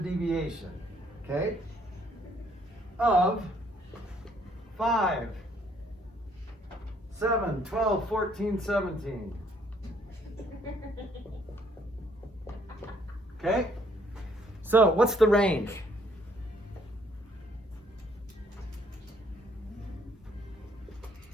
deviation, okay, of 5, 7, 12, 14, 17. Okay? So, what's the range?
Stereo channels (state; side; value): normal; both; correlation 0.65